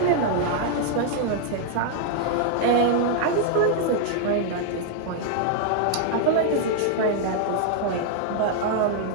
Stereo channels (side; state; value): both; different; correlation -0.01